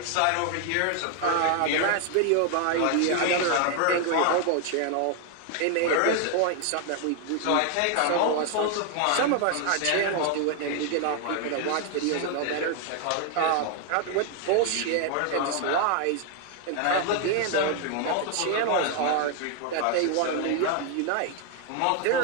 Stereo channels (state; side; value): different; both; correlation 0.00